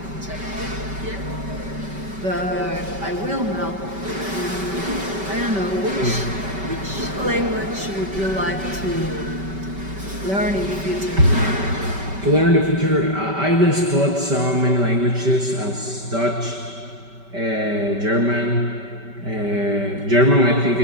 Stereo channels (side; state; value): left; late; 5.2 ms